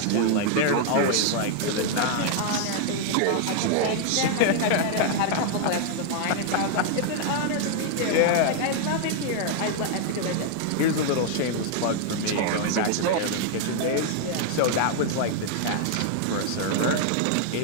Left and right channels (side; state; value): both; different; correlation 0.00